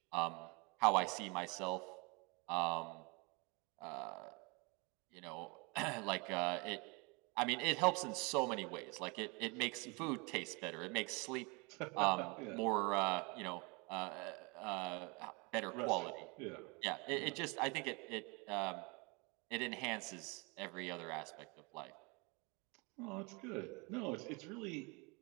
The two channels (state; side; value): quieter; left; 29.2 dB